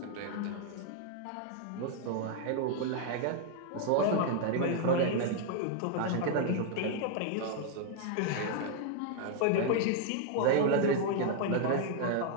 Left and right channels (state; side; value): different; both; correlation 0.00